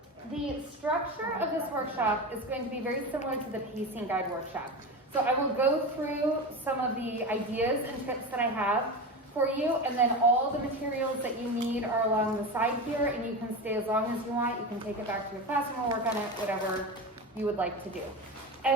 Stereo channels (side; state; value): both; normal; correlation 0.24